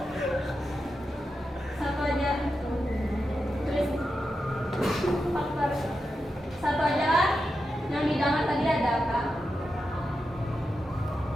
Satu aja. Tulis faktor. Satu aja lah. Yang didengar tadi ada apa?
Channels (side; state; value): both; normal; correlation 0.88